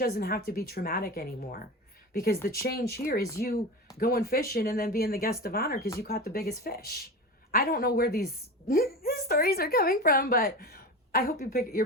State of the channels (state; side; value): normal; both; correlation 0.27